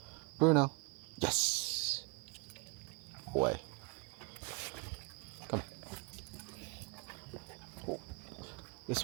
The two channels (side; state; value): left; quieter; 30.7 dB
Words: Bruno. Yes. Boy. Come. Oh.